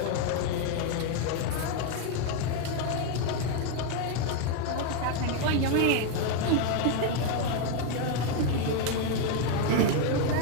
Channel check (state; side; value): different; both; correlation 0.01